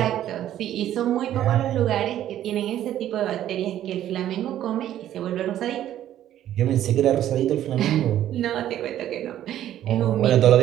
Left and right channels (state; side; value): quieter; left; 11.9 dB